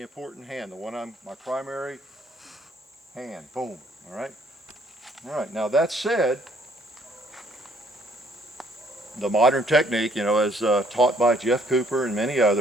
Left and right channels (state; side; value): normal; both; correlation 0.63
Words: important hand, the one my primary hand. Boom. All right. All right. Now that said, the modern technique, you know, as taught by Jeff Cooper and many